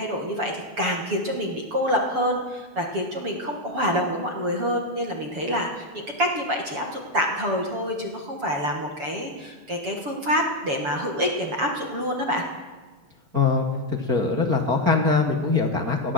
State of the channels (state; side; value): late; left; 7.0 ms